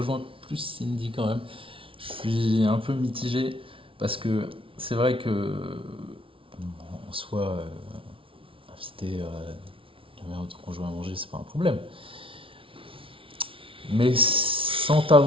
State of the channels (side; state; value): left; late; 0.25 ms